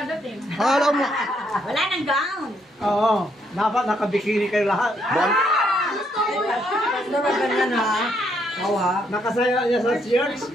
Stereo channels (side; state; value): both; normal; correlation 0.73